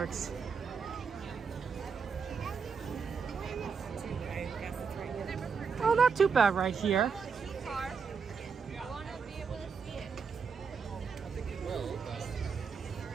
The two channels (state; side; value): quieter; left; 5.9 dB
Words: Oh, not too bad right here.